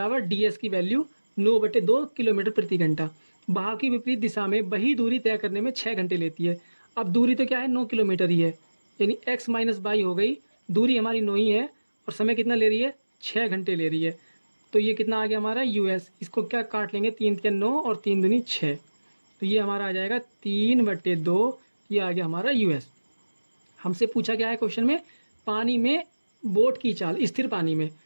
ds की वैल्यू 9/2 किलोमीटर प्रति घंटा। बहाव की विपरीत दिशा में वही दूरी तय करने में 6 घंटे लेती है। अब दूरी तो क्या है 9 किलोमीटर ही है, यानी x माइनस बाई हो गई, दूरी हमारी 9 ही है और समय कितना ले रही है 6 घंटे ले रही है। तो ये कितना आ गया हमारा यूएस, इसको क्या काट लेंगे 3 तिया 9 और 3 दूनी 6, तो ये हमारा आ जाएगा 3/2, ये आ गया हमारा यूएस। हमसे पूछा क्या है क्वेश्चन में, पानी में बोट की चाल स्थिर पानी में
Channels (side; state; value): both; inverted; correlation -1.00